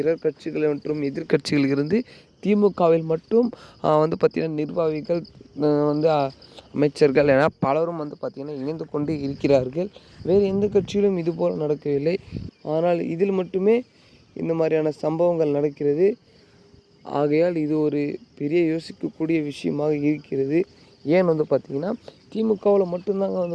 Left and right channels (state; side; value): identical; both; correlation 1.00